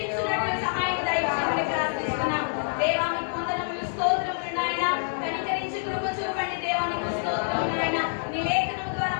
సహాయం దయచేయమని ప్రార్థిస్తున్నాం. దేవానికి వందనములు, స్తోత్రములు నాయన. కనికరించి కృప చూపండి దేవానికి స్తోత్రములు నాయన. నీ లేఖనము ద్వారా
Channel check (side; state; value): right; silent; 60 dB below the other